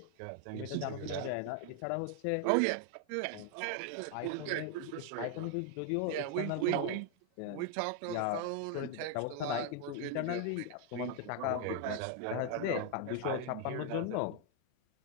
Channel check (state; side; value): different; both; correlation 0.00